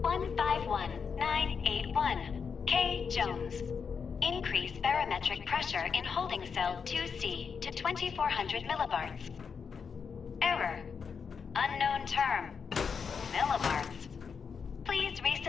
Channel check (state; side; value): quieter; right; 6.1 dB